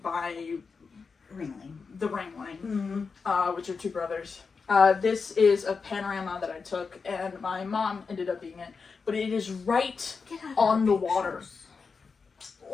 by the Ringling, which are two brothers. This is a panorama that I took, and my mom ended up being it. But it is right on the water,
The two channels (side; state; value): right; quieter; 5.0 dB